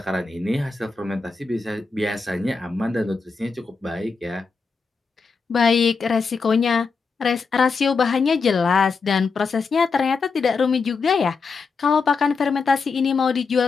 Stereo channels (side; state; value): right; quieter; 4.8 dB